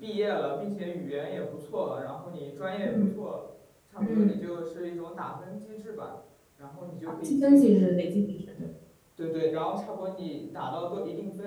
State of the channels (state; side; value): identical; both; correlation 1.00